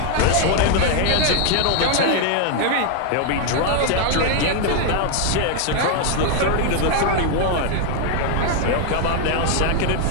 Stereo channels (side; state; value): both; different; correlation 0.01